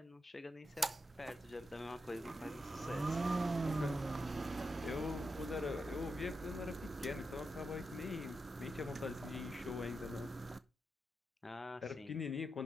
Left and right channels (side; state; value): both; normal; correlation 0.87